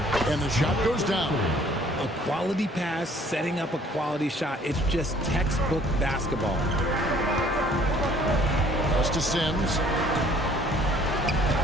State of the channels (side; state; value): both; normal; correlation 0.57